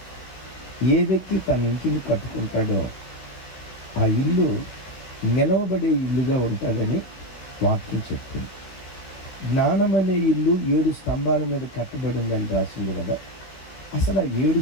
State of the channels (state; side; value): late; right; 16 ms